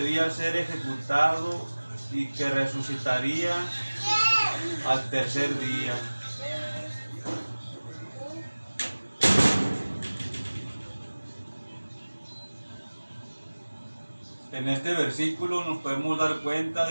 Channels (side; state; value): both; inverted; correlation -1.00